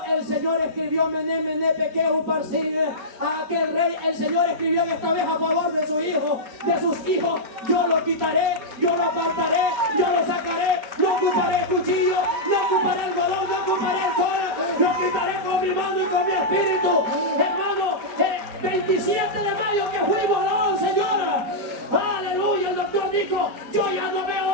el Señor escribió Mené, Mené, Pequeu, Parsin, a aquel rey, el Señor escribió esta vez a favor de su hijo, de sus hijos. Yo lo quitaré, yo lo apartaré, yo lo sacaré, no ocuparé cuchillo, no ocuparé algodón, no ocuparé alcohol, lo quitaré con mi mano y con mi espíritu. Hermano, 27 de mayo que fuimos, alabado al Señor. Aleluya, el doctor dijo, yo ya no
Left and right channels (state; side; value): late; left; 5.1 ms